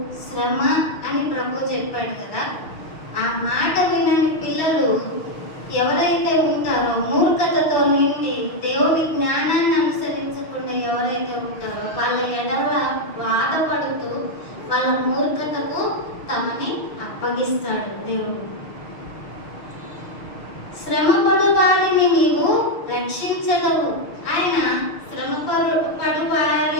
శ్రమ అని ప్రభు చెప్పాడు కదా. ఆ మాట వినని పిల్లలు ఎవరైతే ఉంటారో, మూర్ఖతతో నిండి దేవుని జ్ఞానాన్ని అనుసరించకుండా ఎవరైతే ఉంటారో వాళ్ళ ఎడల బాధపడుతూ వాళ్ళ మూర్ఖతకు తమని అప్పగిస్తాడు దేవుడు. శ్రమపడు వారిని నీవు రక్షించగలవు. ఆయన శ్రమపడు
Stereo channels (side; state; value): right; late; 6.4 ms